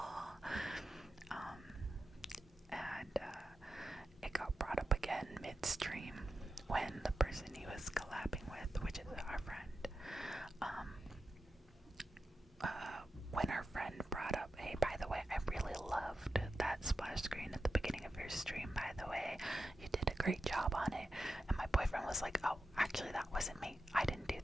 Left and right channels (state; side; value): normal; both; correlation 0.90